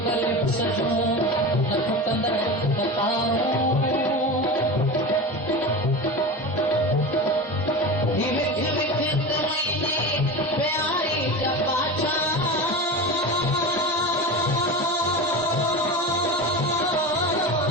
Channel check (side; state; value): both; normal; correlation 0.27